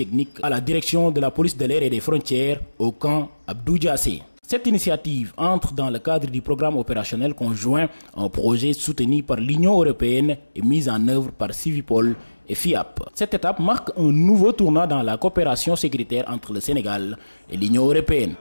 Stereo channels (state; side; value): inverted; both; correlation -1.00